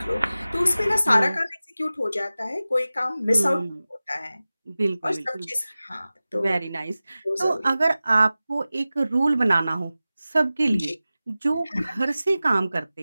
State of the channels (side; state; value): both; inverted; correlation -0.96